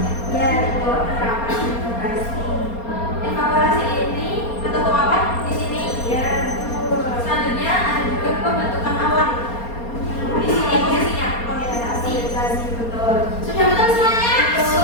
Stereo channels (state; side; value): late; right; 4.3 ms